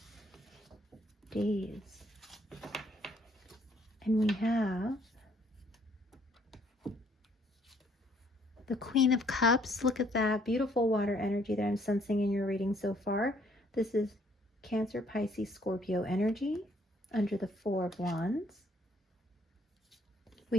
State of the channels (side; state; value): both; normal; correlation 0.65